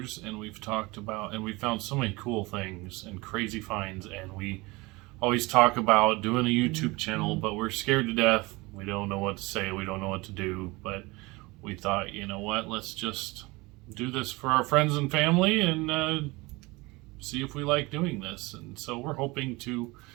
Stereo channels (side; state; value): left; quieter; 23.6 dB